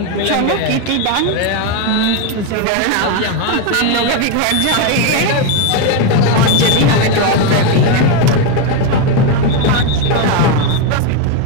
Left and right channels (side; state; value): both; different; correlation 0.02